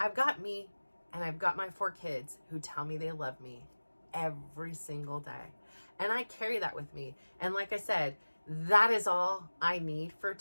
I've got me, and I've got my 4 kids who tell me they love me every single day. And I carry that with me. And like I said, that is all I need for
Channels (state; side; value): inverted; both; correlation -1.00